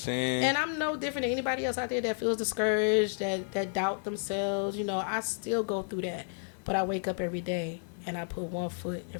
And I'm no different than anybody else out there that feels discouraged, that doubt themselves. I still go through that. But I wake up every day and I put one foot in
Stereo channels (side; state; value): right; silent; digital silence